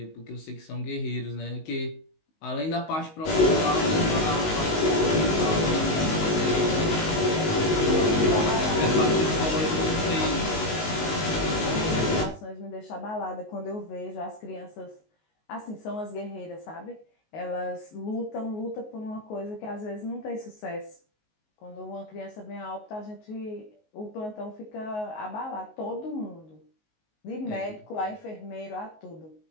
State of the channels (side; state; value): right; late; 19 ms